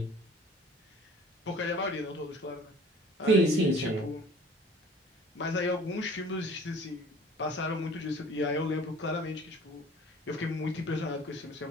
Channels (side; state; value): both; normal; correlation 0.48